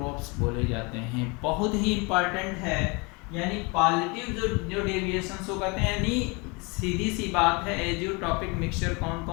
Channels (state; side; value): quieter; right; 29.1 dB